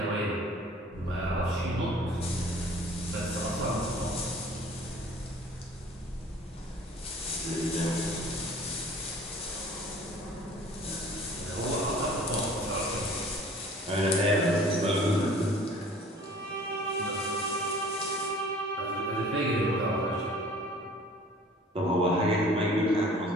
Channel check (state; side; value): normal; both; correlation 0.49